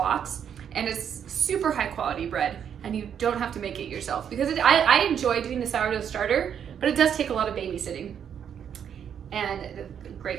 and it's super high quality bread, and you don't have to make it yourself. Because I enjoy doing the sourdough starter, but it does take a lot of babysitting. And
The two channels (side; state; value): left; quieter; 8.4 dB